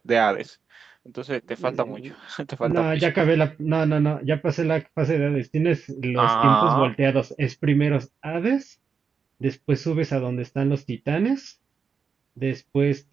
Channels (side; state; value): left; quieter; 5.8 dB